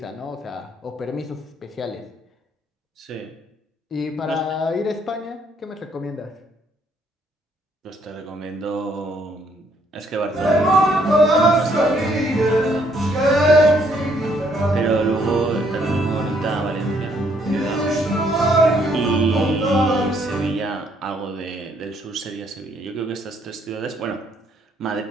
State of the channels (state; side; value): normal; both; correlation 0.68